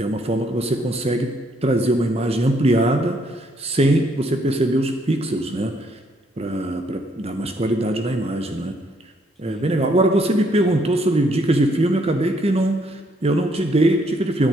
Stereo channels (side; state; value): both; normal; correlation 0.69